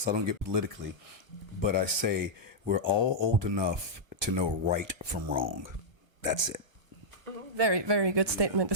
I don't get politically, but I say we're all old enough to know right from wrong. That's it. Very, very good statement,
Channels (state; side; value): late; left; 1.2 ms